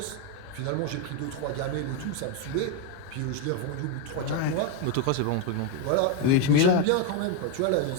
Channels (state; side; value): different; both; correlation 0.02